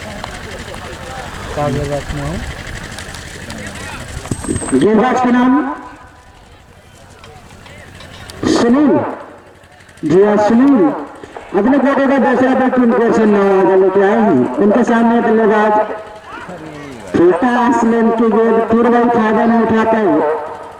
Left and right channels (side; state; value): both; identical; correlation 1.00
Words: गेंदबाज के नाम सुनील जी हाँ सुनील अपने कोटे का दूसरा बैट उनको से 9 ओवर लेके आए हैं। उनके सामने बल्लेबाज छोटा आसमान की गेंद पूर्व फायदा में उठाते हैं